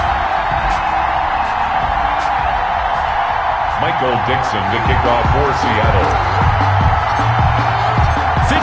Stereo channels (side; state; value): both; identical; correlation 1.00